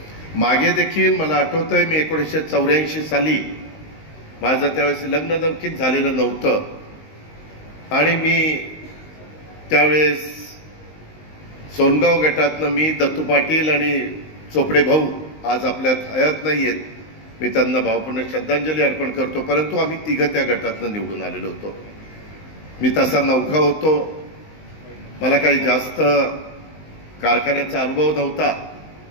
मागे देखील मला आठवतंय, मी 1984 साली, माझं त्यावेळेस लग्न देखील झालेलं नव्हतं आणि मी त्यावेळेस सोनगाव गटातनं मी, दत्तू पाटील आणि चोपडे भाऊ आज आपल्यात हयात नाही आहेत, मी त्यांना भावपूर्ण श्रद्धांजली अर्पण करतो, परंतु आम्ही तिघं त्या गटातनं निवडून आलेलो होतो. मी तसा नौखा होतो, मला काही जास्त कारखान्याचा अनुभव नव्हता,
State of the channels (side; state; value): right; late; 19 ms